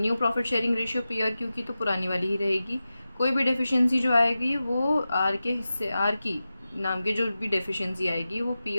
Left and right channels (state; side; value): inverted; both; correlation -0.94